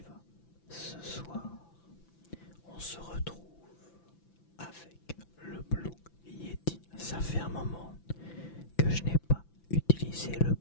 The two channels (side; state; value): right; late; 5.9 ms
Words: vas ce soir? On se retrouve avec le Blue Yeti. Ça fait un moment que je n'ai pas utilisé le